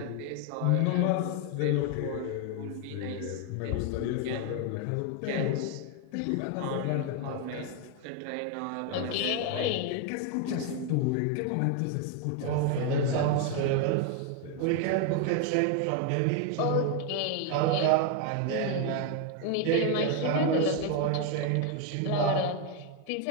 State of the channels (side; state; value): both; different; correlation 0.01